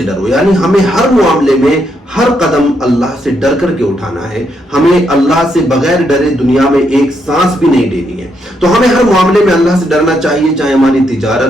ڈرو. یعنی ہمیں ہر معاملے میں ہر قدم اللہ سے ڈر کر کے اٹھانا ہے. ہمیں اللہ سے بغیر ڈرے دنیا میں ایک سانس بھی نہیں لینی ہے. تو ہمیں ہر معاملے میں اللہ سے ڈرنا چاہیے، چاہے ہماری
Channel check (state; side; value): normal; both; correlation 0.78